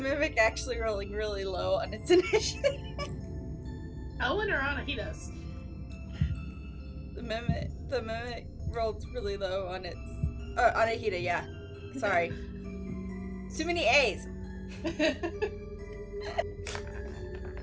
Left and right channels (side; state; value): both; identical; correlation 1.00